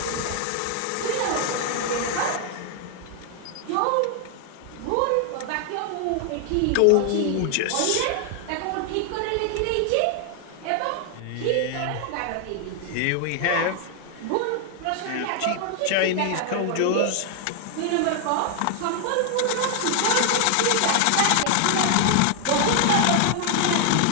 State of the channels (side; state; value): both; different; correlation 0.00